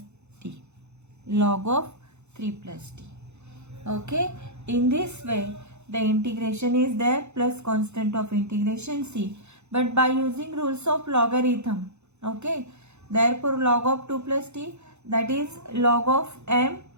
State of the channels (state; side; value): late; left; 0.81 ms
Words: t, log of 3 plus t. Okay, in this way the integration is there plus constant of integration c, but by using rules of logarithm. Okay, therefore log of 2 plus t, that is log of m